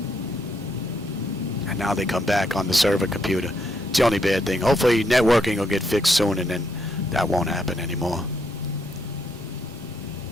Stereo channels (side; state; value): both; normal; correlation 0.76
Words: And now they come back on the server computer. It's the only bad thing. Hopefully networking will get fixed soon and then that won't happen anymore.